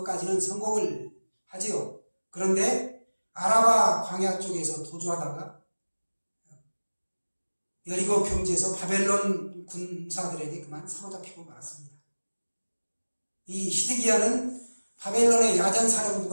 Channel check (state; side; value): inverted; both; correlation -1.00